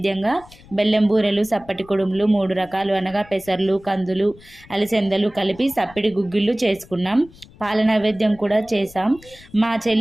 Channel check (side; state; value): left; noise; rumble, 23 dB below the sound